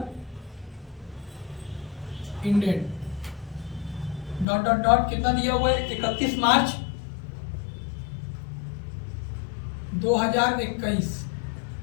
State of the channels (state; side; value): drops out; right; at 4.5 s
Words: ended dot dot dot कितना दिया हुआ है 31 मार्च 2021।